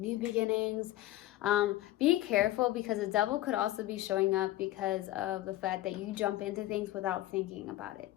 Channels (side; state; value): right; quieter; 15.6 dB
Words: new beginnings. Be careful, because the Devil could also be showing up because of the fact that you jump into things without thinking about